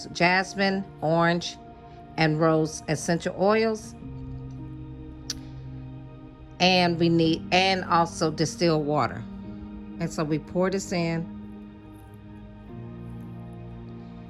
jasmine, orange, and rose essential oils. And we need, and also distilled water. And so we pour this in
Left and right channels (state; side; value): identical; both; correlation 1.00